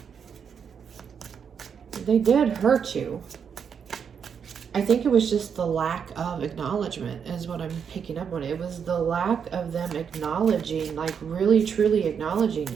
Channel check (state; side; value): quieter; left; 7.1 dB